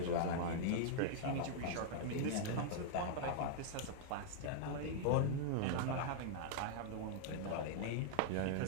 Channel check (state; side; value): different; both; correlation -0.01